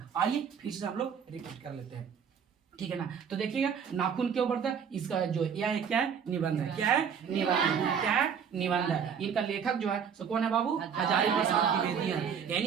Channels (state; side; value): quieter; left; 7.2 dB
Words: आइए फिर से हम लोग रिपीट कर लेते हैं, ठीक है ना। तो देखिएगा नाखून क्यों बढ़ता है, इसका जो यह क्या है? निबंध है। क्या है? निबंध। क्या है? निबंध है। इनका लेखक जो है सो कौन है बाबू? हजारी प्रसाद द्विवेदी है। यानी